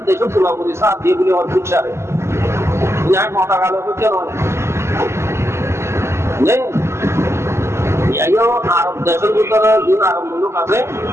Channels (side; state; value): left; late; 0.13 ms